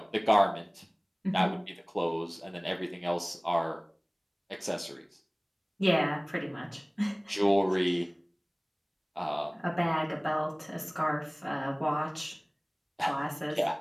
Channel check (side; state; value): both; identical; correlation 1.00